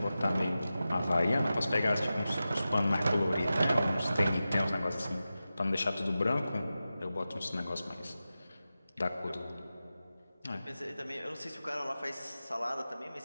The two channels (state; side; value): inverted; both; correlation -0.94